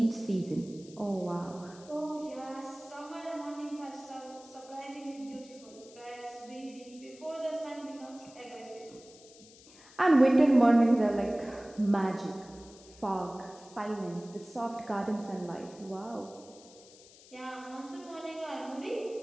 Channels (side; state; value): left; noise; hiss, 22 dB below the sound